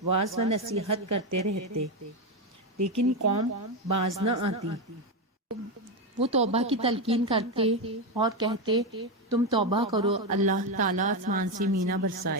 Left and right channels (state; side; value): normal; both; correlation 0.10